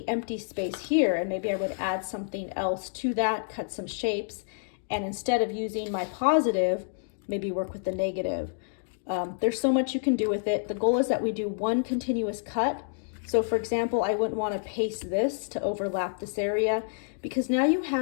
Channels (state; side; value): silent; right; digital silence